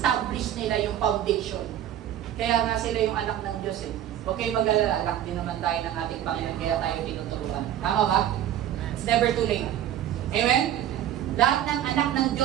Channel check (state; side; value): quieter; left; 11.3 dB